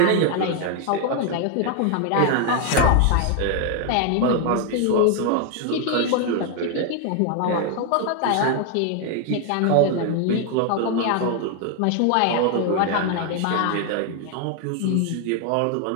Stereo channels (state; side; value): different; both; correlation 0.00